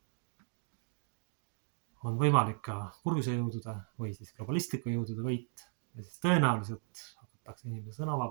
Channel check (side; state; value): left; silent; 53 dB below the other